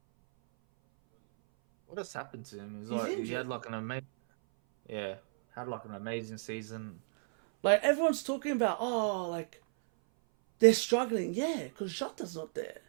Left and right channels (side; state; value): left; silent; 55 dB below the other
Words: What has happened to him? He's injured. He had like an Yeah, had like an amazing season. Like everyone's talking about, oh, like they're struggling. Yeah, because Jota's not there